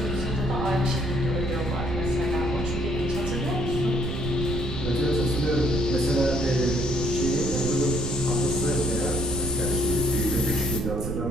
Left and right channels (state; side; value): noise; right; rumble, 4 dB below the sound